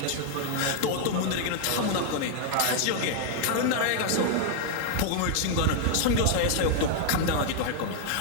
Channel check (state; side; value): different; both; correlation 0.00